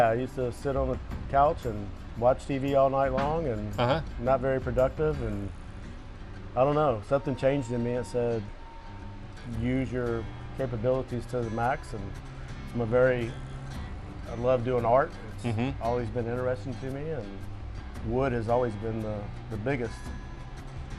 I used to sit on the couch and watch TV all night long, and not very productive. And I don't know, something changed in me. It said, use your capabilities to the max. And I love doing art. It's always been interesting to me, and wood has always been the biggest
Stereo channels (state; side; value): identical; both; correlation 1.00